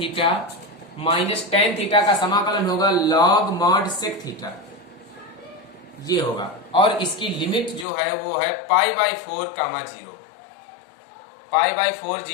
minus tan theta का समाकलन होगा लॉग मॉड सेक थीटा, ये होगा। और इसकी लिमिट जो है वो है π/4, 0, π/4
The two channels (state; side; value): drops out; right; at 7.9 s